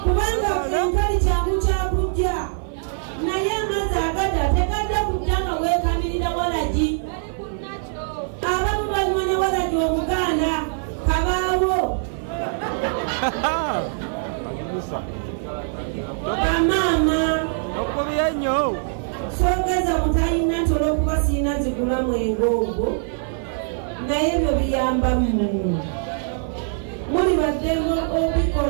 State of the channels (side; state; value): left; silent; 55 dB below the other